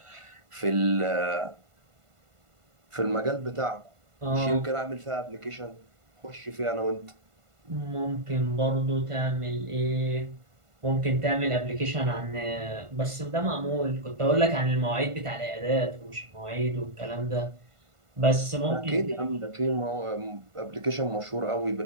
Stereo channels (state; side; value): late; left; 1.5 ms